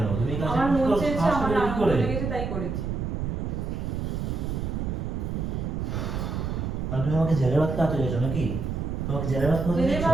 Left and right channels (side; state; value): right; noise; rumble, 2 dB below the sound